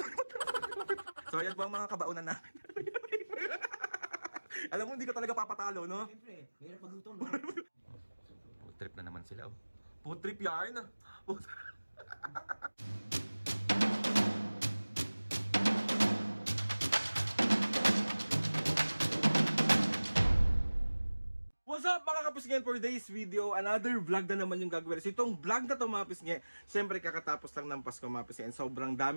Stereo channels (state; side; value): inverted; both; correlation -1.00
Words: So ayan po ang mga kabaunan namin. Alam mo, hindi ka talaga papatalo, no? Siyempre, mahirap magluto, no? Food trip na naman sila, oh. Food trip yarn. What's up mga kapisngen, for today's video, another vlog na naman yung gagawin. So itong vlog na to mga kapisngen, syempre kakatapos lang ng Pasko mga kapisngen. Sobrang